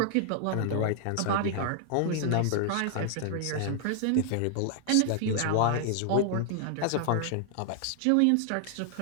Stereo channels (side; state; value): both; different; correlation 0.00